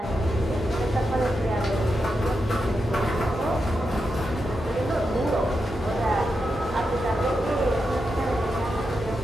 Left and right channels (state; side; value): normal; both; correlation 0.87